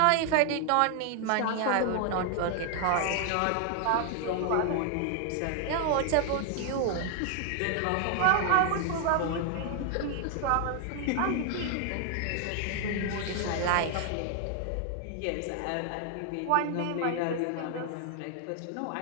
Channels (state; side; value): different; both; correlation 0.00